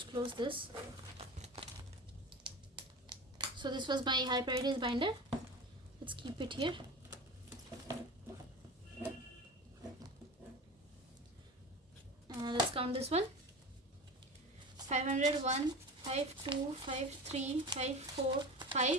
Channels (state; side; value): normal; both; correlation 0.32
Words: close this. So this was my high priorities binder. Let's keep it here. Let's count this one. 500, 1, 5, 2, 5, 3, 5, 4,